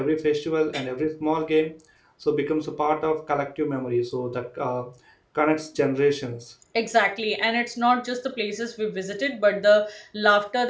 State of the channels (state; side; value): identical; both; correlation 1.00